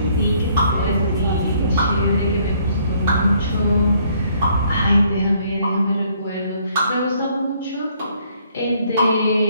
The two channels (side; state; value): both; inverted; correlation -0.65